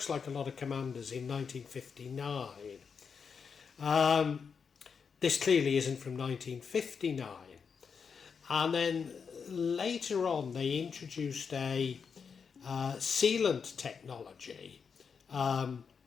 like a lot of Commanders in 1959. This clearly isn't from 1959. And then later on, they introduced a sealant technology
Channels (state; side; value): quieter; right; 6.1 dB